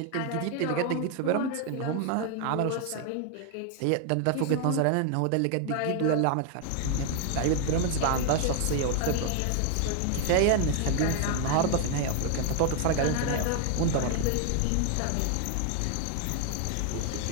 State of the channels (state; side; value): different; both; correlation 0.01